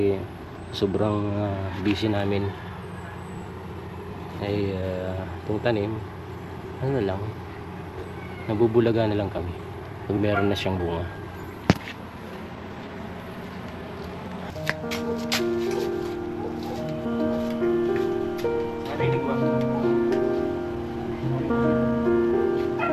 sobrang busy namin. Ay itong tanim lang, nabubulaga na lang kami pag meron na siyang bunga.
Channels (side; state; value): both; identical; correlation 1.00